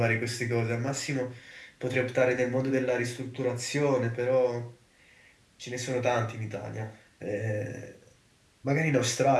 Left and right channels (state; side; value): identical; both; correlation 1.00